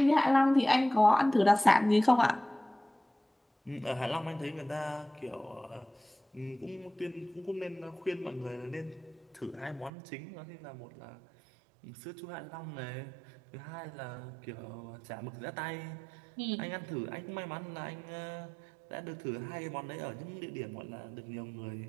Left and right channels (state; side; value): drops out; left; at 9.9 s